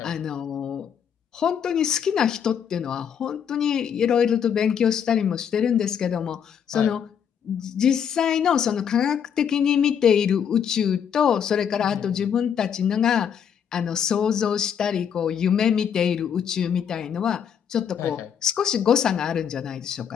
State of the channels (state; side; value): quieter; right; 8.0 dB